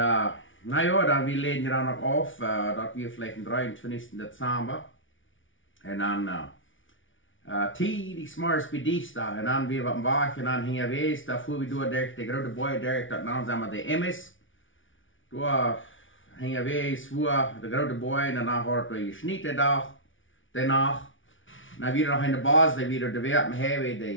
ja, dan we leden dan nog af, dat we vielleicht am 23. Dezember. En dan die s'morgens bij dienstdag. En dan weer wat wacht en dan gingen we eens, daar voeren we door de grote boy door, dat naam zijn we de Emmis. Door gingen we eens voor de grote boy en dan hadden we gesnitten dag, daarna. Dan weer nog in de baas, die weer de werken hebben,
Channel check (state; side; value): late; right; 0.56 ms